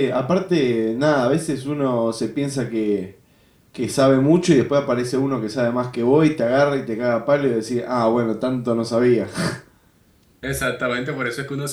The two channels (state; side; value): identical; both; correlation 1.00